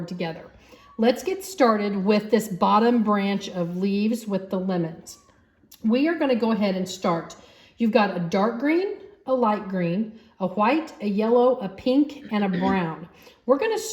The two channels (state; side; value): identical; both; correlation 1.00